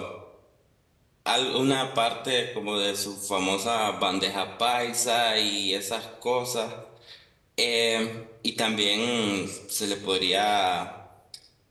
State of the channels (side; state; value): both; identical; correlation 1.00